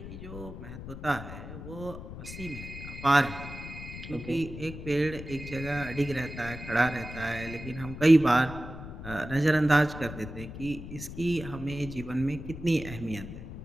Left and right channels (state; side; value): noise; left; rumble, 11 dB below the sound